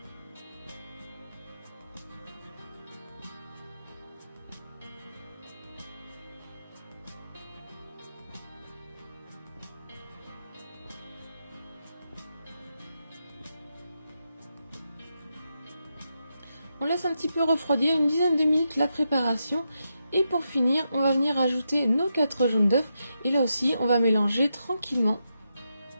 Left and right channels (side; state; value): both; inverted; correlation -0.85